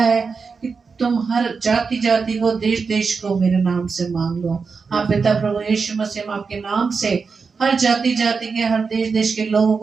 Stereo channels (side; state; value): left; quieter; 5.1 dB